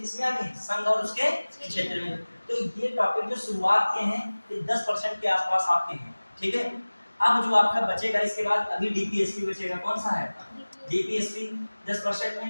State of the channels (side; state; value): both; inverted; correlation -1.00